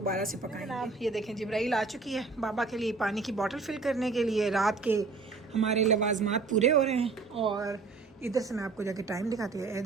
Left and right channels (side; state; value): left; quieter; 4.2 dB